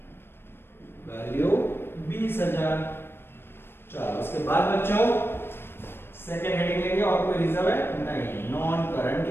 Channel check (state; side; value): late; right; 0.11 ms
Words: वैल्यू 20,000। चलो उसके बाद बच्चों सेकंड हेडिंग लेंगे, और कोई रिजर्व है नहीं, नॉन करंट